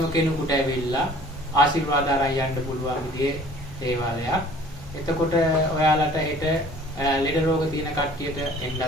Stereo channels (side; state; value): both; normal; correlation 0.51